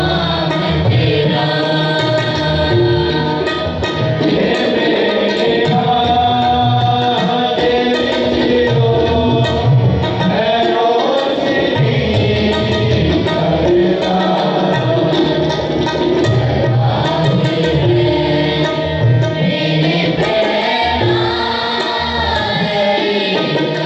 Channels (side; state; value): both; identical; correlation 1.00